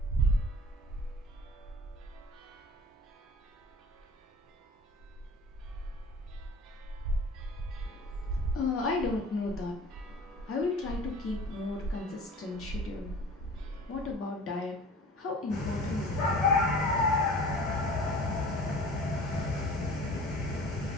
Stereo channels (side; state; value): both; normal; correlation 0.44